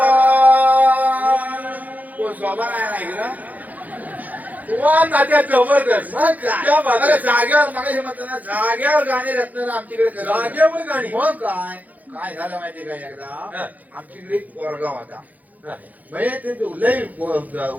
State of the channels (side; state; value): left; late; 0.080 ms